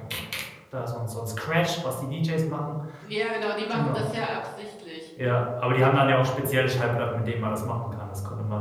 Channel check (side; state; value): both; identical; correlation 1.00